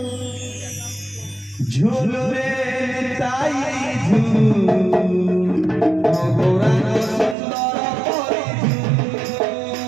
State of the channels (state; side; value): drops out; left; at 7.4 s